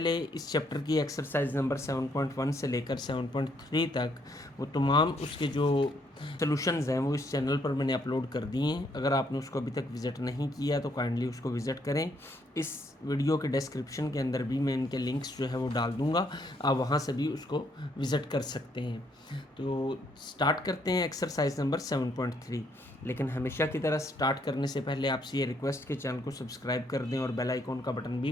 इस चैप्टर की एक्सरसाइज नंबर 7.1 से लेकर 7.3 तक वो तमाम उसके जो सॉल्यूशंस हैं वो इस चैनल पर मैंने अपलोड कर दिए हैं। अगर आपने उसको अभी तक विज़िट नहीं किया तो काइंडली उसको विज़िट करें। इस वीडियो के डिस्क्रिप्शन के अंदर भी मैं इनके लिंक्स जो है वो डाल दूंगा, आप वहाँ से भी उसको विज़िट कर सकते हैं। तो स्टार्ट करते हैं एक्सरसाइज नंबर 7.3। लेकिन हमेशा की तरह स्टार्ट करने से पहले आपसे ये रिक्वेस्ट कि चैनल को सब्सक्राइब कर दें और बेल आइकॉन का बटन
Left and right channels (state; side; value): normal; both; correlation 0.71